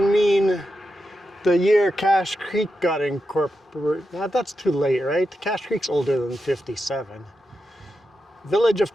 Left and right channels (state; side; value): normal; both; correlation 0.88